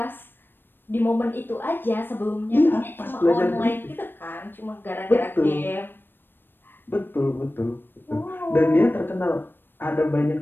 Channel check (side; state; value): right; late; 0.096 ms